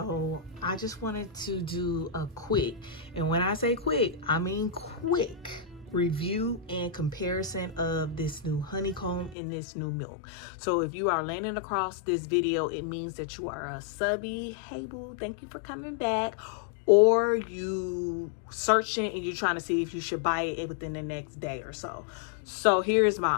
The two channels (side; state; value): right; drops out; at 9.3 s